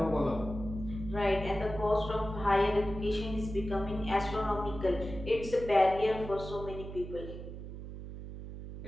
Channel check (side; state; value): right; noise; hum, 10 dB below the sound